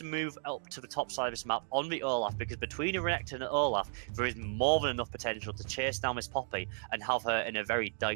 move up to the top side of this map on the Olaf, because between Renekton and Olaf there is more than enough potential to chase down Miss Poppy and have her in a very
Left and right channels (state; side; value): silent; left; digital silence